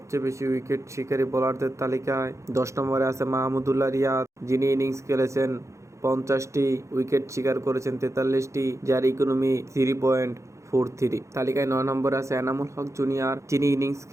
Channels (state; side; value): late; left; 0.14 ms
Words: বেশি উইকেট শিকারী বোলারদের তালিকায় 10 নম্বরে আছে মাহমুদুল্লাহ রিয়াদ, যিনি ইনিংস খেলেছেন 50টি, উইকেট শিকার করেছেন 43টি, যার ইকোনমি 3.43। তালিকায় 9 নম্বরে আছে এনামুল হক জুনিয়র, যিনি ইনিংস